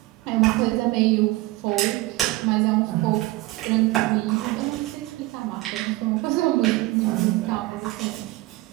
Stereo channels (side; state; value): left; quieter; 19.5 dB